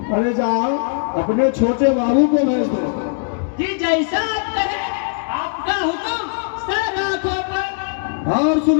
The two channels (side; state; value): right; silent; digital silence